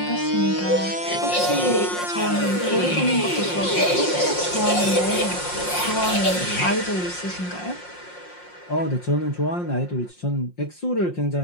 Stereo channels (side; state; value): right; late; 5.6 ms